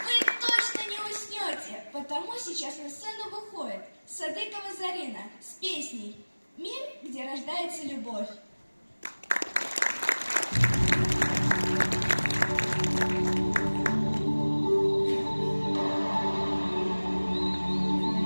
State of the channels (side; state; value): both; inverted; correlation -1.00